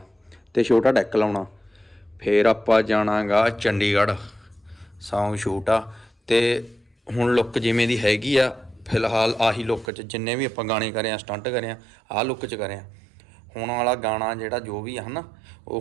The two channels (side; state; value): left; drops out; at 9.9 s